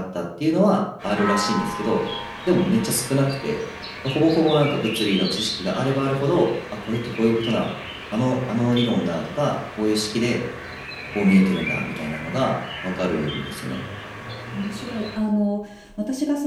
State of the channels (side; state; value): both; identical; correlation 1.00